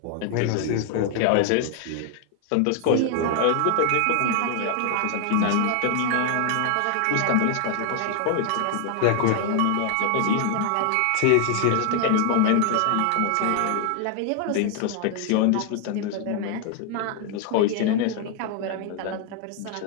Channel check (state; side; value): different; both; correlation 0.00